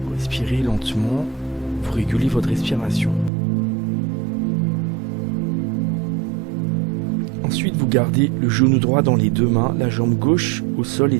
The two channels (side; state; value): left; drops out; at 3.3 s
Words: Vous respirez lentement, vous régulez votre respiration. Ensuite, vous gardez le genou droit dans les deux mains, la jambe gauche au sol